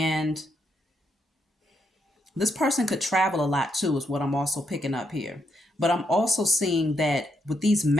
this person could travel a lot too, is what I'm also picking up here. But I'm also seeing that with these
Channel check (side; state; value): both; normal; correlation 0.78